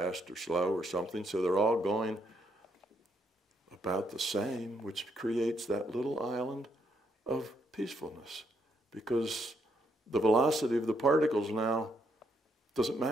or slow or something, so they're all going about the same, which creates that little island of peacefulness because the velocity of the particles now doesn't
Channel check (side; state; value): both; normal; correlation 0.75